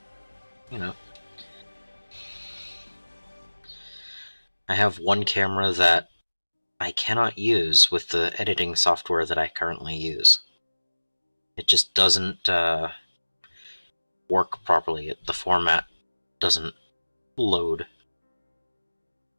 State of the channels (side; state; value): both; inverted; correlation -1.00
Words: You know, I have one camera that I cannot use with the editing software that I currently use. It just doesn't work properly. The format doesn't load.